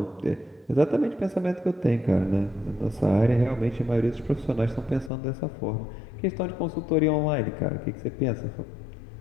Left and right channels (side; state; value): right; drops out; at 5.1 s